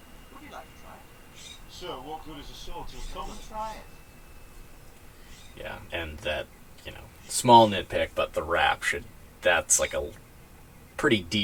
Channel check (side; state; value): both; identical; correlation 1.00